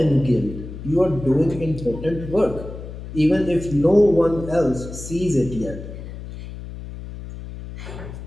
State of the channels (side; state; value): left; noise; hum, 11 dB below the sound